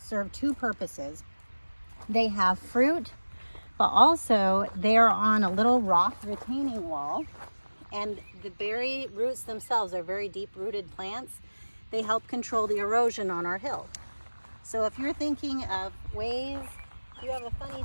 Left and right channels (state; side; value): inverted; both; correlation -1.00